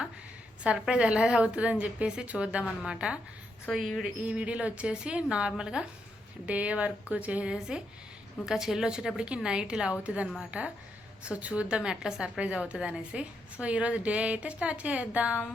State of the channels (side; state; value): both; normal; correlation 0.80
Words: సర్ప్రైజ్ ఎలా అవుతుందని చెప్పేసి చూద్దామన్నమాట. సో ఈ వీడియోలో వచ్చేసి నార్మల్గా డే వర్క్ చేసేసి ఇంకా చెల్లి వచ్చేటప్పటికి నైట్ ఇలా అవుతుంది అనమాట. సో చూద్దాం ఎట్లా సర్ప్రైజ్ అవుతుంది అనేసి. సో ఈరోజు డే అయితే స్టార్ట్ చేద్దాం.